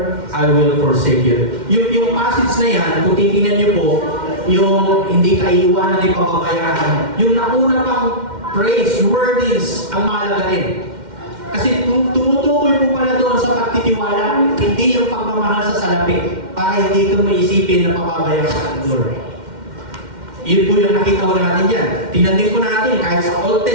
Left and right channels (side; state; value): left; late; 2.1 ms